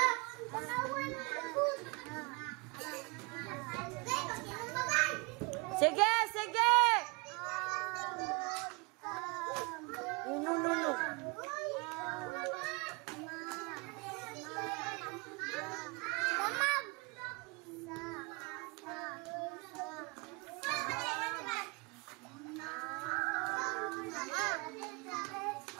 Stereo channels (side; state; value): left; quieter; 29.2 dB